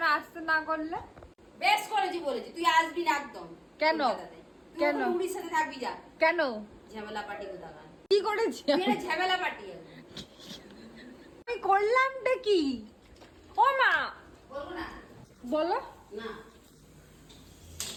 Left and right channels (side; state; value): both; identical; correlation 1.00